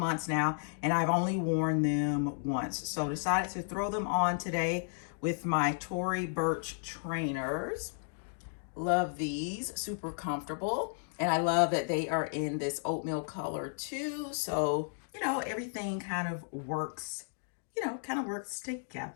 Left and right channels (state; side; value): silent; right; digital silence